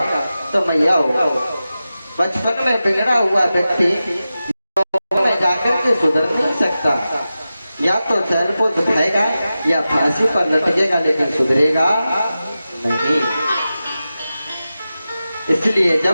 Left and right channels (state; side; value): inverted; both; correlation -0.93